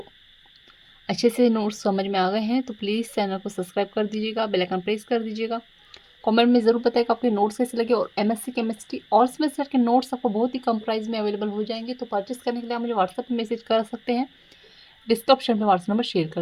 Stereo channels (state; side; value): identical; both; correlation 1.00